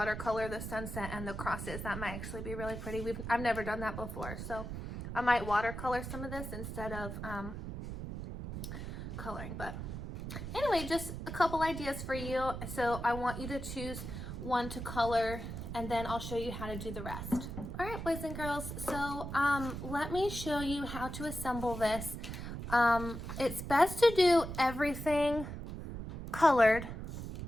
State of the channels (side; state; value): right; noise; rumble, 7 dB below the sound